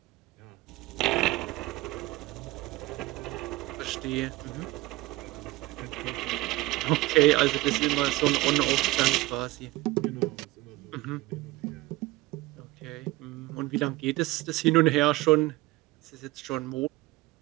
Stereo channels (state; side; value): quieter; left; 19.2 dB